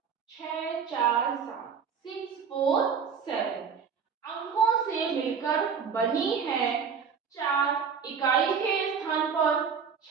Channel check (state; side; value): quieter; left; 6.4 dB